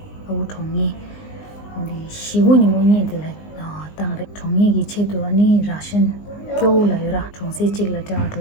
au tongi. Only she wouldn't money the like tang tongi gichetu ani Russian kyo la yura chungsi chigla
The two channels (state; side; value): late; right; 19 ms